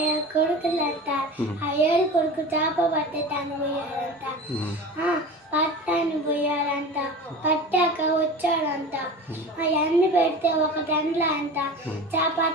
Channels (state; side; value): normal; both; correlation 0.34